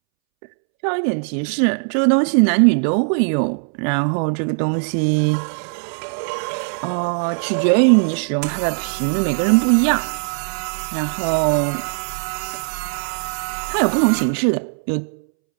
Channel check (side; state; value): left; silent; 66 dB below the other